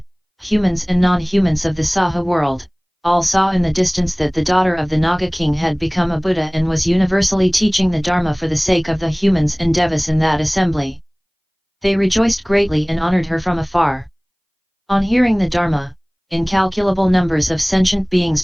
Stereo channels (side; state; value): both; identical; correlation 1.00